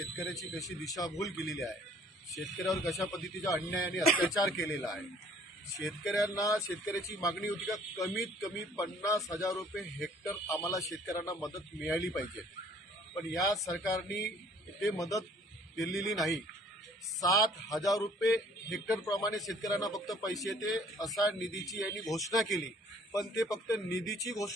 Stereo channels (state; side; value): normal; both; correlation 0.57